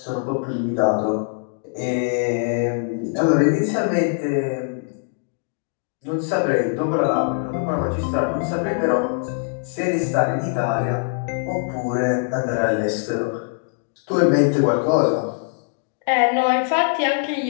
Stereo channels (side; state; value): right; silent; digital silence